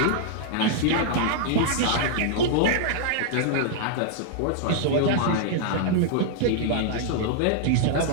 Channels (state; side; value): different; both; correlation -0.01